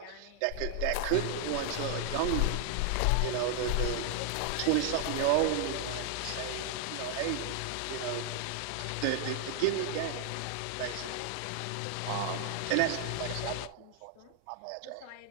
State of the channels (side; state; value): both; different; correlation 0.00